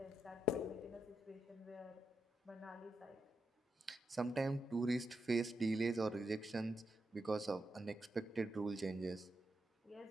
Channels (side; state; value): both; normal; correlation 0.84